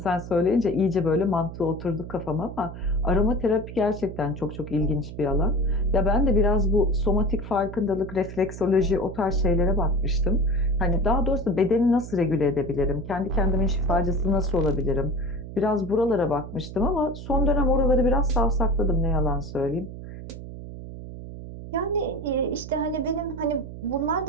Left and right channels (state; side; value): noise; right; hum, 11 dB below the sound